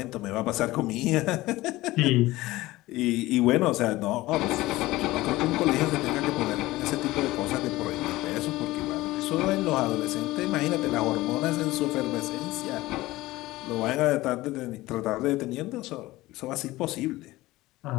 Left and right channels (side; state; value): right; quieter; 18.4 dB